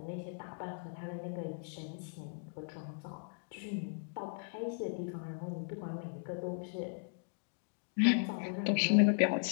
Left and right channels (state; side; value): silent; right; digital silence